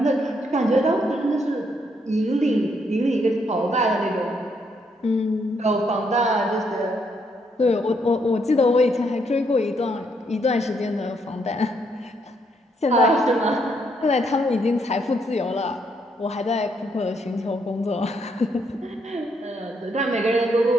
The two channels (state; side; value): normal; both; correlation 0.74